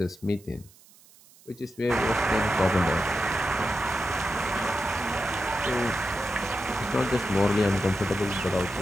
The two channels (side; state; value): right; noise; hiss, 26 dB below the sound